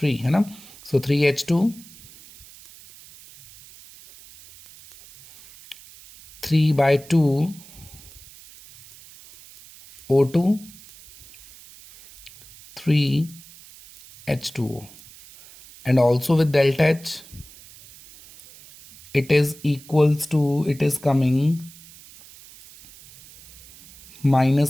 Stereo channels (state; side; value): noise; right; hiss, 21 dB below the sound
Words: है ना? So 3H2, 3 by 2 O2, 3 H2O, and also with delta H it is equals to, it is coming